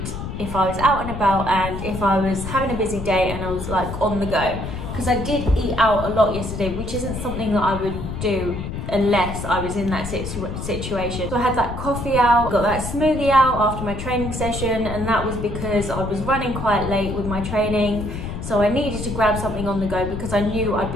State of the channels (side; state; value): left; noise; rumble, 6 dB below the sound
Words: if I was out and about and if I was having a busy day and I was like on the go. Because I did eat out a lot yesterday, which isn't something that I would do unless I was in that situation. So I had that coffee out, got that smoothie out after my training session, and that was because I was running quite late with my training. So I needed to grab something on the go because I knew I'd